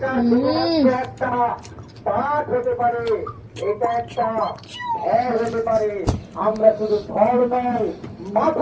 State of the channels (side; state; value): both; identical; correlation 1.00